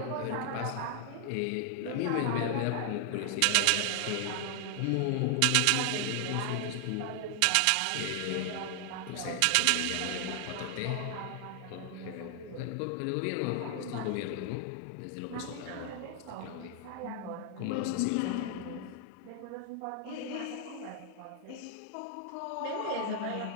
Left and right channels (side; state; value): both; different; correlation 0.00